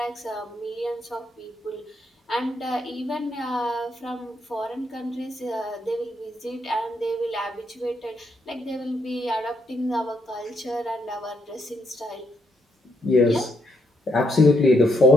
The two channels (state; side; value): normal; both; correlation 0.75